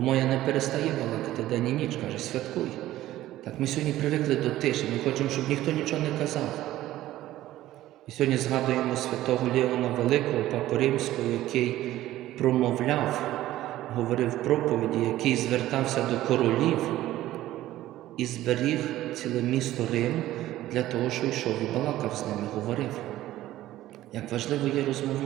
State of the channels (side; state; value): left; quieter; 14.7 dB